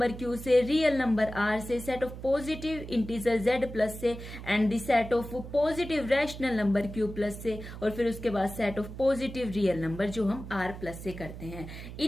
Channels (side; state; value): right; noise; hum, 11 dB below the sound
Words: q से, रियल नंबर r से, set of positive integer z+ से, and the set of positive rational number q+ से, और फिर उसके बाद set of positive real number जो हम r+ से करते हैं।